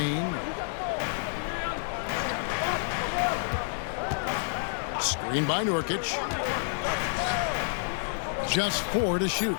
Screen by Nurkic. Just 4 to shoot.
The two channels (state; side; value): silent; right; digital silence